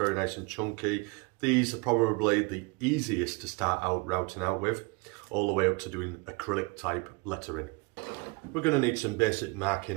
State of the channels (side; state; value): left; quieter; 27.8 dB